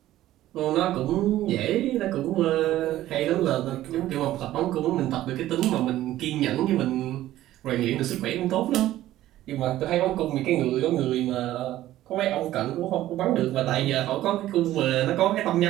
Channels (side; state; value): left; quieter; 14.3 dB